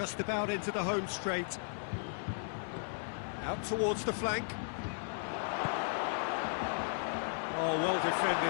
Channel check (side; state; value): right; silent; digital silence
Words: about into the home straight. Out towards the flank. Oh, well